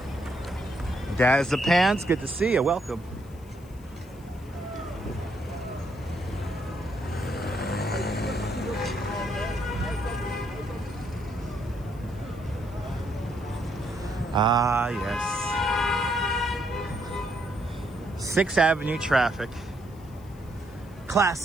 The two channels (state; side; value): noise; left; hiss, 27 dB below the sound